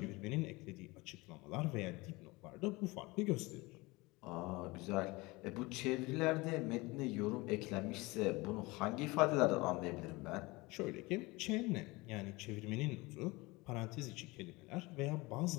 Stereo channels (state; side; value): quieter; right; 23.2 dB